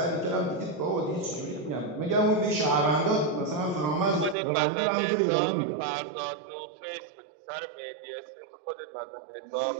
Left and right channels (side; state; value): left; drops out; at 4.4 s